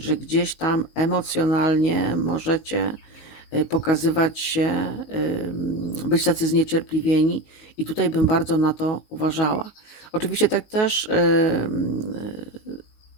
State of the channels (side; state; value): right; late; 19 ms